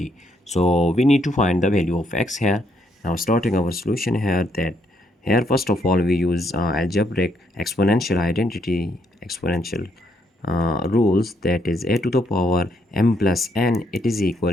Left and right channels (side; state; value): both; normal; correlation 0.73